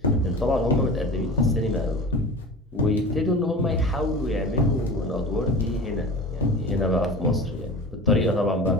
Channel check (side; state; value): both; normal; correlation 0.35